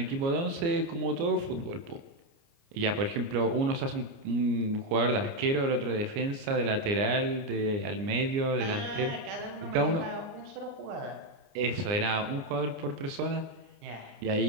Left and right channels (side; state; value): left; late; 29 ms